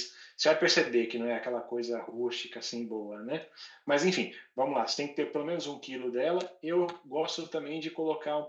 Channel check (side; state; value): both; identical; correlation 1.00